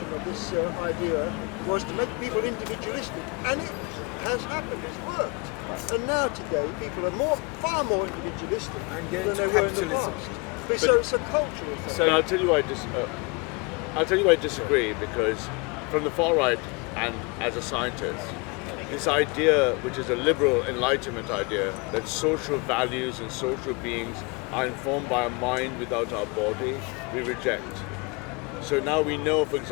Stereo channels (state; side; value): quieter; right; 29.9 dB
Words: of this idea was to make people individualistic, and it has happened, it's worked. And now today, people are far more individualistic and get into than they were in the capitalism. past. So it's a cultural thing. So I'll tell you why I disagree, because from the far right and as a scientist, this idea, which is a liberal enlightenment idea, that social values and social beings are informed by a mind without our body, we reject. So now we know, for